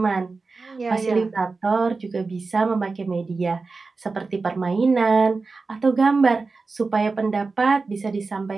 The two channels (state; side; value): quieter; left; 4.1 dB